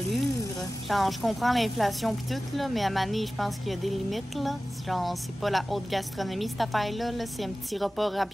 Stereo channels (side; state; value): both; normal; correlation 0.96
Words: Genre, je comprends l'inflation pis tout, là, mais à Mané, je pense qu'il y a des limites, là. Genre, c'est pas la haute gastronomie, cette affaire-là, là. C'est un petit repas